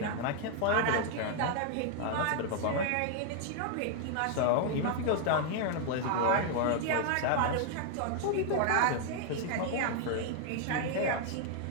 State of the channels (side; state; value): both; different; correlation 0.00